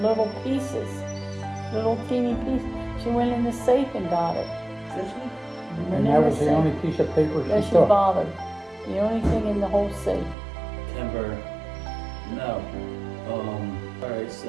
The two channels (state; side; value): drops out; left; at 10.4 s